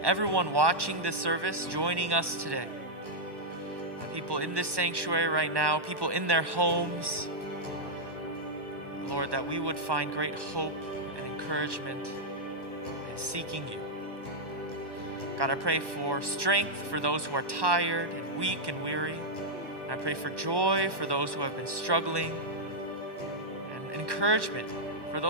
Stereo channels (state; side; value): late; left; 1.1 ms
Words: everyone watching this service, joining us today, people in this sanctuary right now, people in their homes, Lord, that we would find great hope and encouragement in seeking you. God, I pray for strength for those who are tired and weak and weary. I pray for joy for those who have been struggling and encouragement for